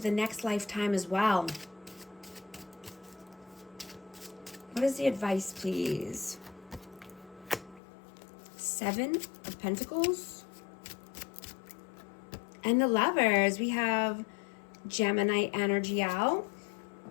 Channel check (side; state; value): right; drops out; at 7.8 s